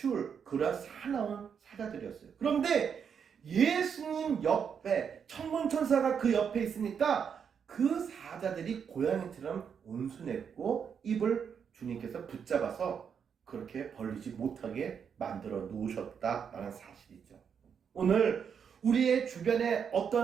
그런 사나운 사자들이었어요. 그런데 예수님 옆에 천문천사가 그 옆에 있으니까 그 사자들이 고양이처럼 온순했고 입을 주님께서 붙잡아서 그렇게 벌리지 못하게 만들어 놓으셨다라는 사실이죠. 오늘 우리의 주변에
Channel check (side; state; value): left; quieter; 7.2 dB